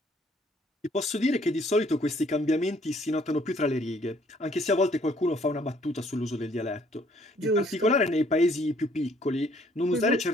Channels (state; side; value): normal; both; correlation 0.63